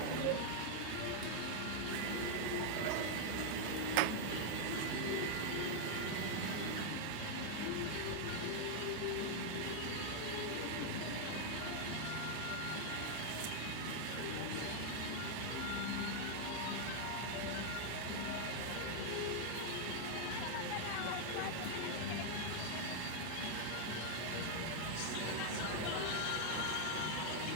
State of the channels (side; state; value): both; different; correlation 0.00